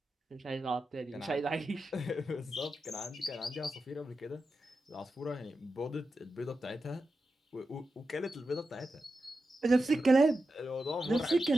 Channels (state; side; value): normal; both; correlation 0.90